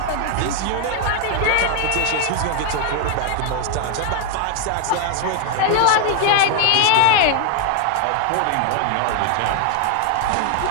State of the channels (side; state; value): both; different; correlation 0.00